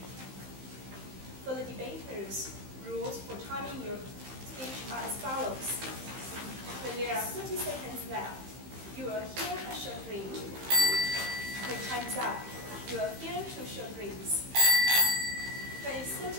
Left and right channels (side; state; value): left; late; 15 ms